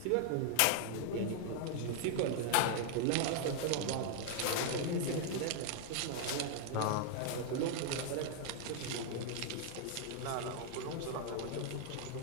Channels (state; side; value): different; both; correlation 0.00